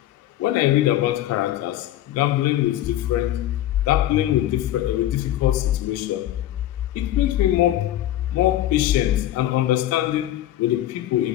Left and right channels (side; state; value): right; quieter; 13.3 dB